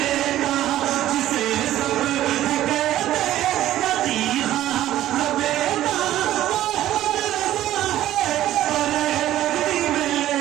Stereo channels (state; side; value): quieter; left; 13.4 dB